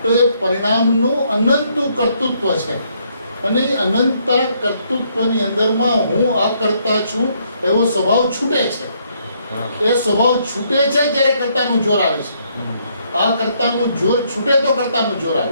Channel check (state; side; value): inverted; both; correlation -0.71